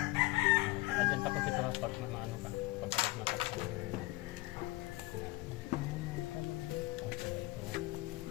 Adyan tapos ito pag maano ka, pag matakot.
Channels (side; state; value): right; quieter; 20.0 dB